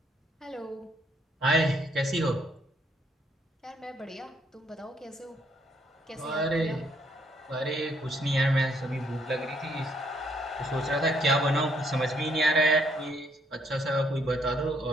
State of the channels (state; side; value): normal; both; correlation 0.70